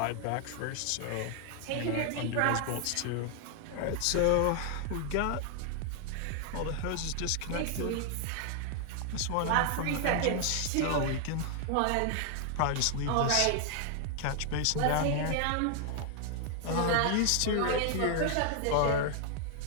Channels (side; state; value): both; different; correlation 0.00